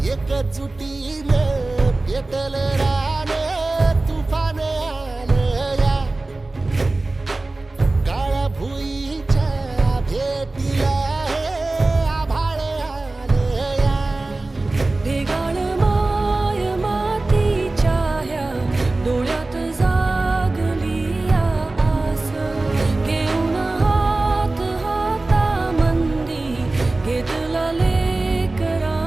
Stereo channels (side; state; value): left; quieter; 3.1 dB